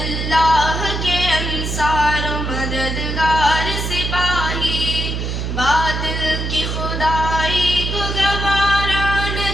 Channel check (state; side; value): noise; right; hum, 3 dB below the sound